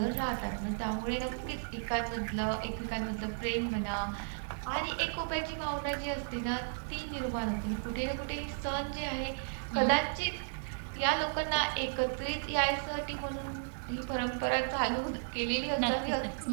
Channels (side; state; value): left; silent; digital silence